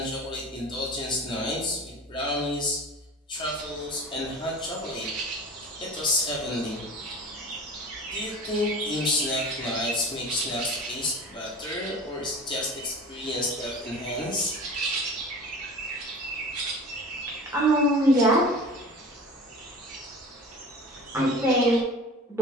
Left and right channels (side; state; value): both; normal; correlation 0.37